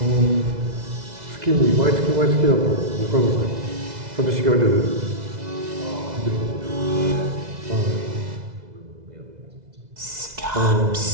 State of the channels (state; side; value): late; left; 2.0 ms